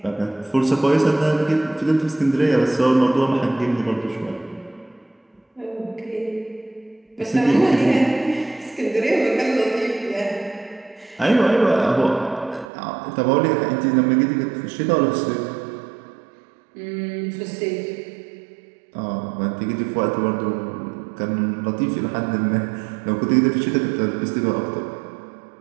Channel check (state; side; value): drops out; left; at 12.7 s